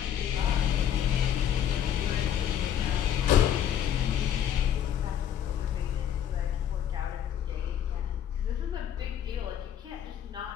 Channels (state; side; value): quieter; right; 9.7 dB